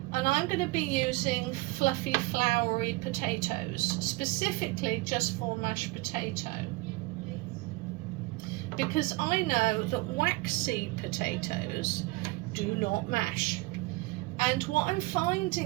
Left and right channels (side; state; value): left; quieter; 22.6 dB